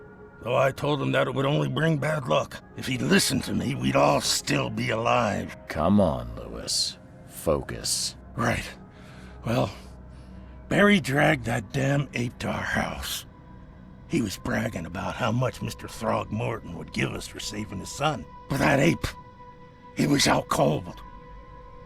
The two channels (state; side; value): identical; both; correlation 1.00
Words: Though I told him that it would only bring bad luck. If he'd listened to me, we'd all still be alive. Come on, Lewis. Focus. Right. Well, Barry dragged that damn ape to our house. He was bragging about how much Mr. Throgmorton would give us for saving his son. But that ape, he was out cold.